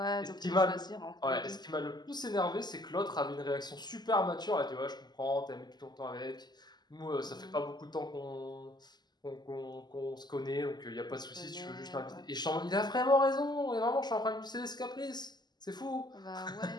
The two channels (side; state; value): right; late; 0.21 ms